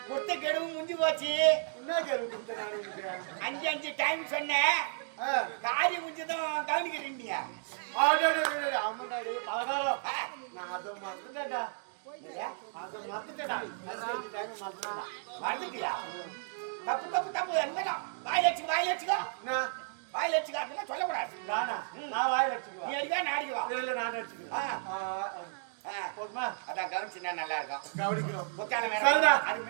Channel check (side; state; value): left; silent; digital silence